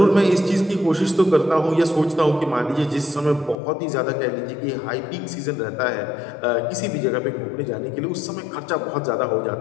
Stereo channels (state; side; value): drops out; right; at 3.6 s